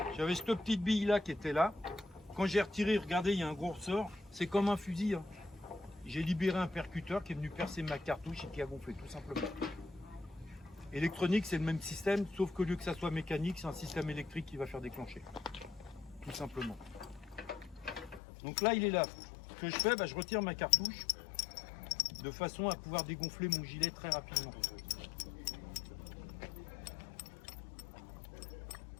J'avais cette petite bille là qui était là. Quand j'ai retiré, regardez, il y a un gros ressort. C'est comme un fusil. Hein. J'ai libéré un percuteur qui est venu percer ma cartouche et qui a gonflé, tout simplement. Électronique, c'est le même système, sauf qu'au lieu que ça soit mécanique, c'est un système électrique qui va faire déclencher. Tout simplement. Donc là, il est là. Ce que je fais, bah, je retire ma cartouche de façon à pouvoir dégonfler mon gilet très rapidement.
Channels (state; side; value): drops out; right; at 18.2 s